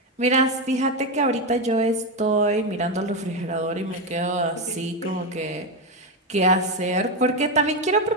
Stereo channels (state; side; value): normal; both; correlation 0.10